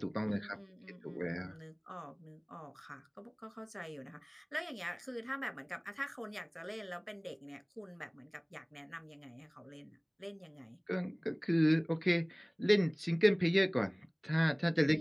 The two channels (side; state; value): both; identical; correlation 1.00